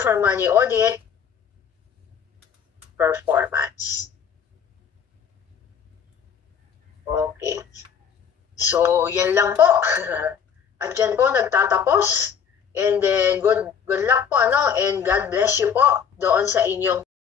money audit, performance. Okay. So, yan lang po. At yan po nagtatapos. And then, good luck po, and God bless you po doon sa inyong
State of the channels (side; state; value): right; quieter; 7.4 dB